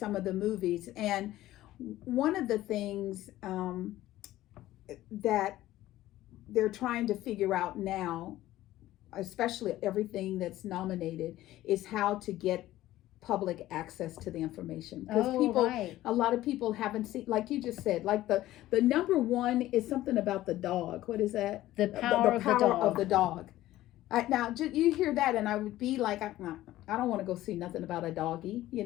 of the movies. And one of the things that they're trying to figure out now, especially everything that's nominated, is how to get public access to the information, because a lot of people haven't seen, like you just said, like the number one is something about the dog. What is that? The power of the dog. Now you hear that and I would be like, I don't want to go see nothing about a doggy,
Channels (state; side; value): quieter; right; 15.2 dB